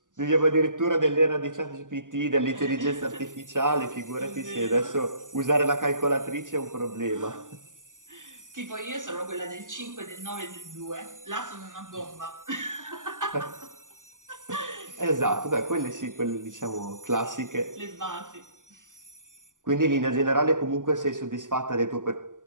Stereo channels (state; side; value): late; left; 0.88 ms